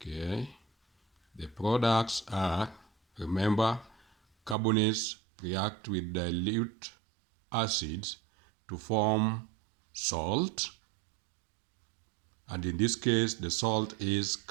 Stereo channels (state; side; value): drops out; left; at 4.5 s